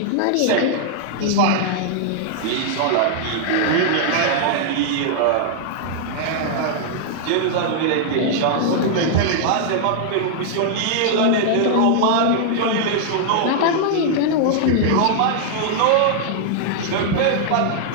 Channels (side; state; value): both; different; correlation -0.01